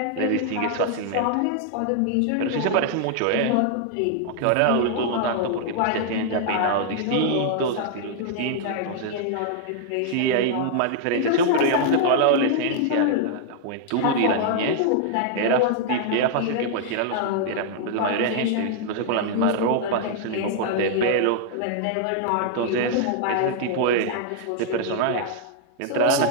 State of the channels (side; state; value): both; different; correlation -0.01